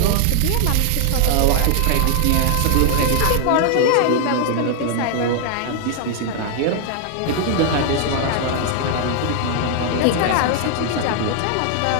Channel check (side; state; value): both; different; correlation 0.00